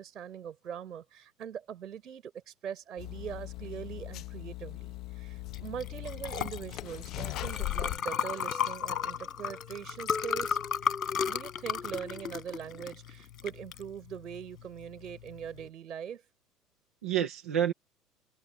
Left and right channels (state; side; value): normal; both; correlation 0.46